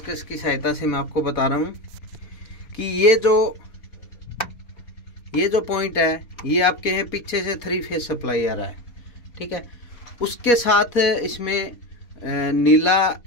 की सहायता से मैं आपको बता रहा हूँ कि ये जो पॉइंट है ये आपके हैं पीछे से 3 फेस सप्लाई आ रहा है, ठीक है। उसके साथ इसमें नीला,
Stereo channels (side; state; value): right; late; 4.2 ms